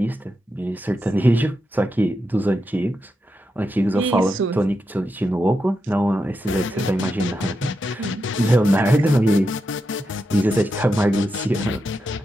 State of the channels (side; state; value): both; normal; correlation 0.86